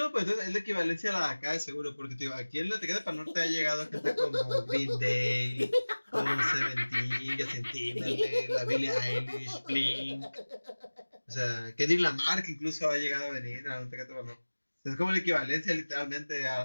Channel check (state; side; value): inverted; both; correlation -1.00